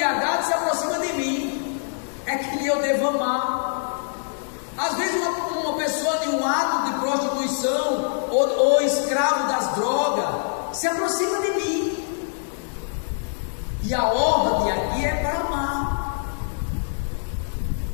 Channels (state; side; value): silent; right; digital silence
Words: se aproxima de mim, é que eu devo amar. Às vezes uma pessoa de um ato de prostituição ou escravo das drogas se aproxima de mim, e a ordem aqui é para amar.